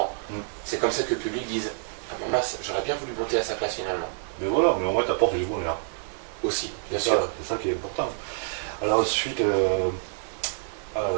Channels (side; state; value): left; silent; 56 dB below the other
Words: C'est comme ça que le public dise, ah maman, j'aurais bien voulu monter à sa place finalement. Mais voilà, mais au moins t'apportes du bonheur. Aussi, bien sûr. C'est ça qui est important. Alors ensuite,